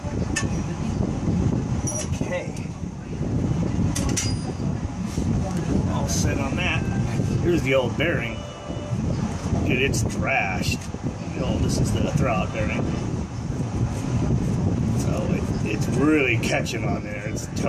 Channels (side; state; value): both; identical; correlation 1.00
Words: Okay, all set on that. Here's the old bearing. Dude, it's trashed. This is the throwout bearing. So it's really catching on there. It's